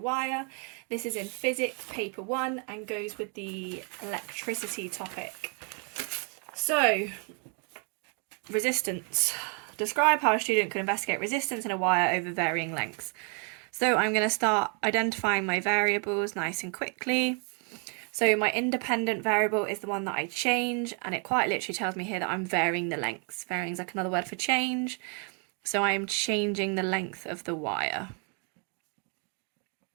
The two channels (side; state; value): left; quieter; 39.4 dB